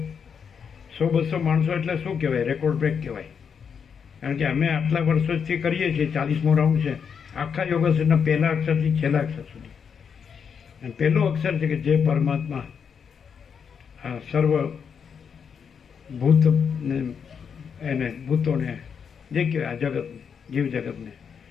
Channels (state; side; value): quieter; right; 6.8 dB